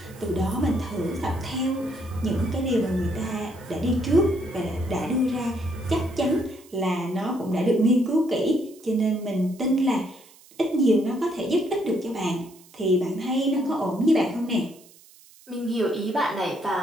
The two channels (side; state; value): right; noise; hiss, 25 dB below the sound